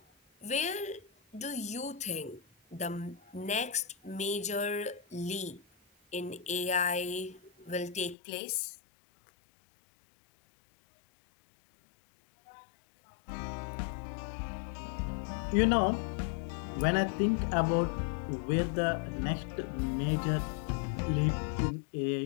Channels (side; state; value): right; drops out; at 8.2 s